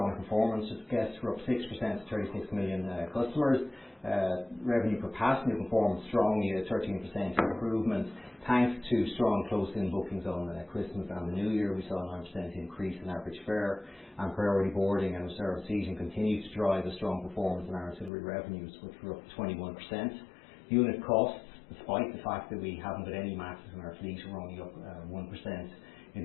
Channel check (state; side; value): drops out; right; at 18.1 s